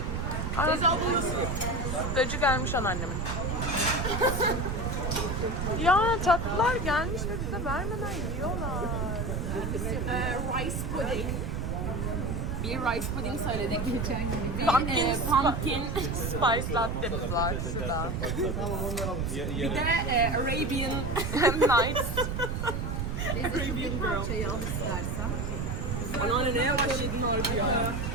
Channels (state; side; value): noise; right; rumble, 1 dB below the sound